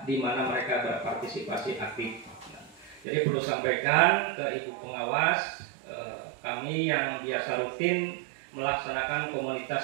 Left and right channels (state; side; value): drops out; left; at 3.1 s